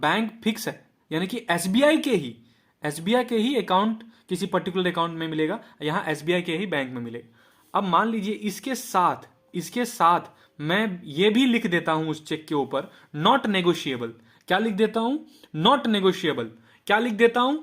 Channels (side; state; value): both; identical; correlation 1.00